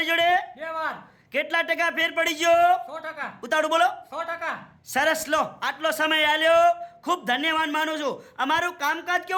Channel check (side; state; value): both; identical; correlation 1.00